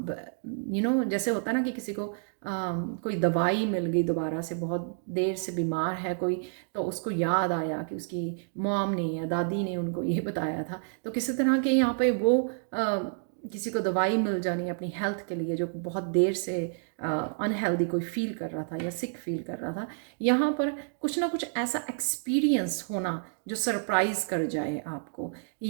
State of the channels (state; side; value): silent; left; digital silence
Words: होता है ना कि किसी को कोई दवाई मिल गई दोबारा से, बहुत देर से बीमार है कोई, तो उसको याद आया कि उसकी मॉम ने या दादी ने उनको ये बताया था। तो किसी तरह के यहाँ पे वो किसी को दवाई मिल जानी अपनी हेल्थ के लिए, जो बहुत देर से अनहेल्दी कोई फील कर रहा था या सिक फील कर रहा था, यहाँ पर कुछ ना कुछ ऐसा एक्सपीरियंस होना जो सरप्राइज कर जाए आपको।